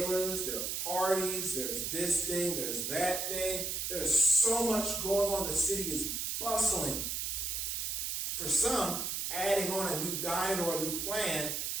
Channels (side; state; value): right; noise; hiss, 2 dB below the sound